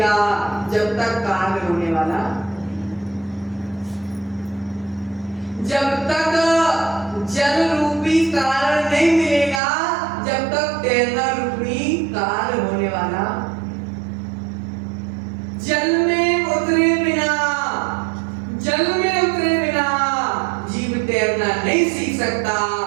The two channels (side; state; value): left; drops out; at 9.6 s